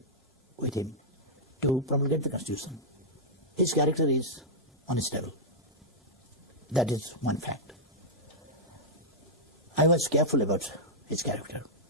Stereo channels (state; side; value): normal; both; correlation -0.08